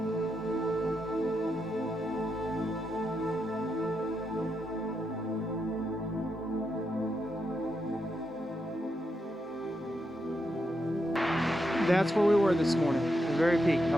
That's where we were this morning, the very peak, how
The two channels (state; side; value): normal; both; correlation 0.83